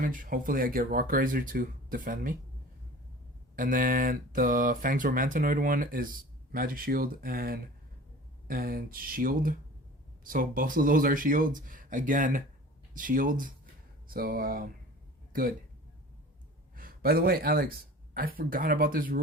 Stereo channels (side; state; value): both; normal; correlation 0.41